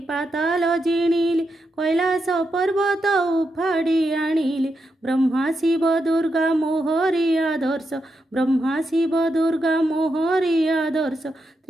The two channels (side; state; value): both; normal; correlation 0.85